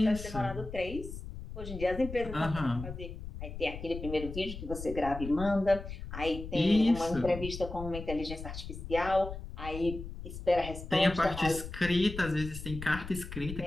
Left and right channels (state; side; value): noise; left; rumble, 9 dB below the sound